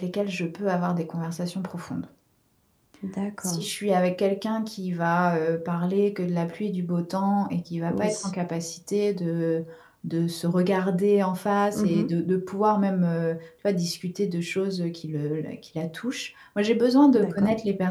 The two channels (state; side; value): identical; both; correlation 1.00